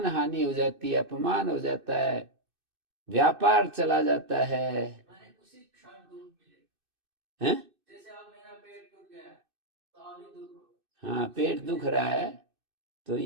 हानि हो जाती है, अपमान हो जाता है, व्यापार चला जाता है। उसी क्षण दुख मिलेगा। हैं? जैसे अब मेरा पेट टूट गया तो अभी दुख, हाँ, पेट दुख रहा है तो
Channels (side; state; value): left; late; 2.6 ms